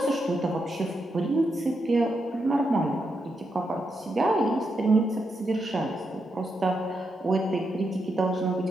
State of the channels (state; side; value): normal; both; correlation 0.83